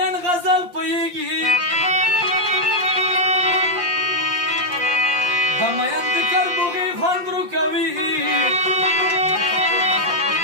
غزل پوهیږي د مین د کربوغي خوند رو کوي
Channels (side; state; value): left; late; 5.7 ms